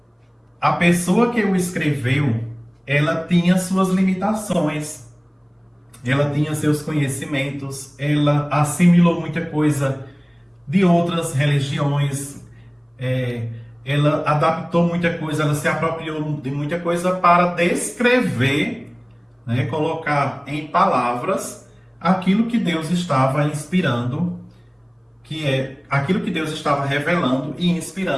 a pessoa que o escreveu, ela tinha suas limitações, ela tinha seus conhecimentos, ela assimilou muita coisa de outras religiões, ela adaptou muita coisa, ela se apropriou de muita coisa para descrever, né, colocar em palavras aquilo que Deus estava inspirando, que é aquilo que Deus estava revelando e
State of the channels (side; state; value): both; identical; correlation 1.00